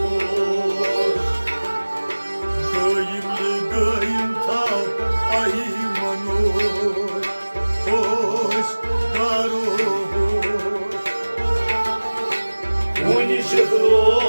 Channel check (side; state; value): both; inverted; correlation -1.00